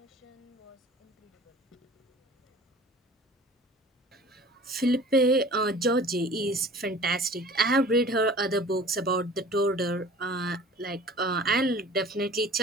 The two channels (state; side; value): normal; both; correlation 0.45